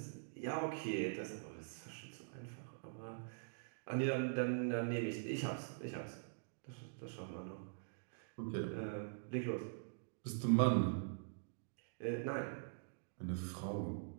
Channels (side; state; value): left; silent; digital silence